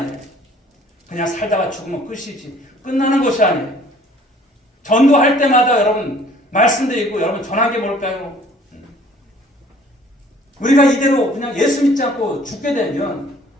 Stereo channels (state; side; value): normal; both; correlation 0.55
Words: 그냥 살다가 죽으면 끝이지. 끝나는 것이 아니에요. 전도할 때마다 여러분 말씀드리고 여러분 전한 게 뭘까요? 우리가 이대로 그냥 예수 믿지 않고 죽게 되면